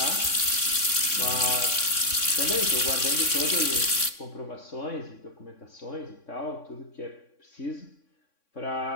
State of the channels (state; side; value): late; right; 3.6 ms